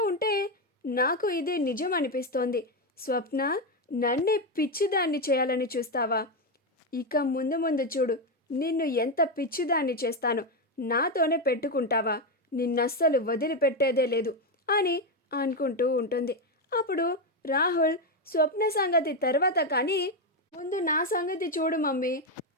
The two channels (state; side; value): normal; both; correlation 0.08